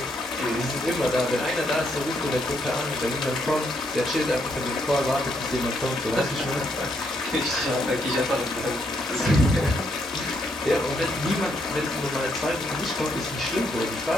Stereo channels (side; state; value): both; normal; correlation 0.75